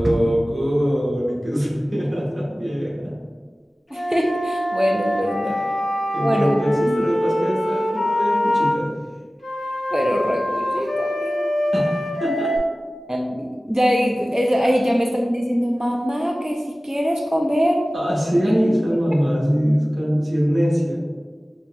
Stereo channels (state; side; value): normal; both; correlation 0.97